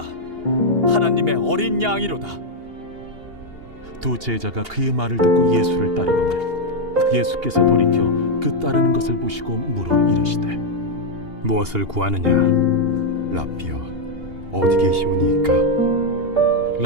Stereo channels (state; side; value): late; left; 2.8 ms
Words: 하나님의 어린 양이로다. 두 제자가 그의 말을 듣고 예수를 따르거늘 예수께서 돌이켜 그 따르는 것을 보시고 물어 이르시되 무엇을 구하느냐? 랍비여, 어디 계시오니이까?